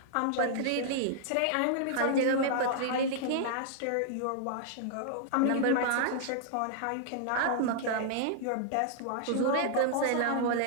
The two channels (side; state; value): both; different; correlation -0.01